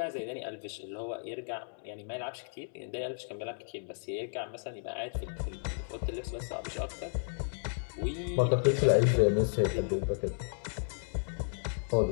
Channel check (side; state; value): right; silent; digital silence